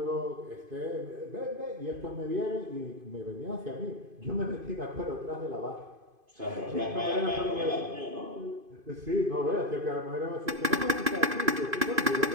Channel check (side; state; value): left; late; 2.5 ms